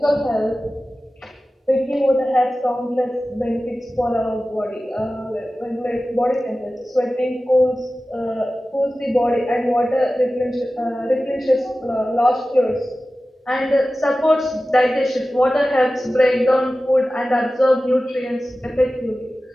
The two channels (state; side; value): normal; both; correlation 0.95